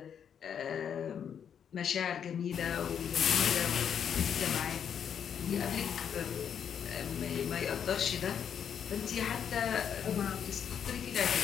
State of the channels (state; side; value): quieter; right; 8.1 dB